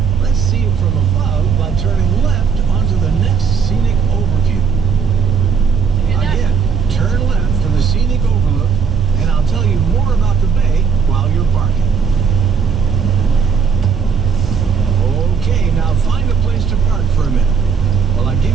let's see it from above by turning left onto the next scenic overview. Again, turn left for the scenic overlook, and I'll tell you more about the bay while you're parking. Okay, now find a place to park for a minute while I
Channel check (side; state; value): left; quieter; 6.2 dB